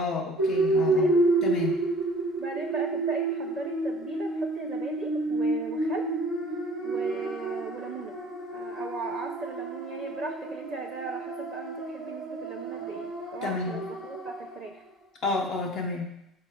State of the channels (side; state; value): both; normal; correlation 0.49